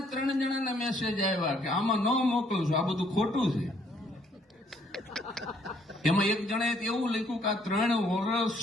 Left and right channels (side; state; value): both; normal; correlation 0.66